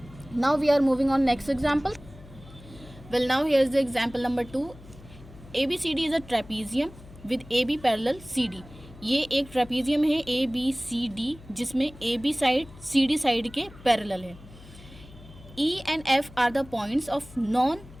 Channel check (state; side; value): noise; left; hum, 19 dB below the sound